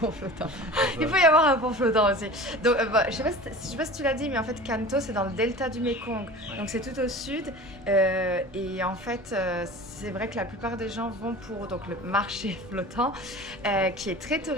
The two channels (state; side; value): normal; both; correlation 0.38